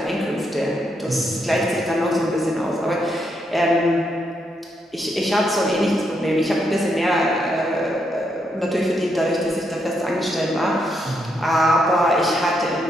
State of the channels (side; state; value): both; normal; correlation 0.79